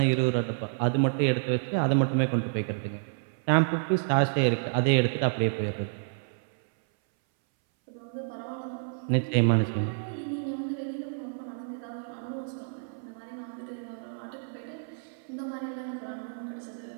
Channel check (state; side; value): silent; left; 58 dB below the other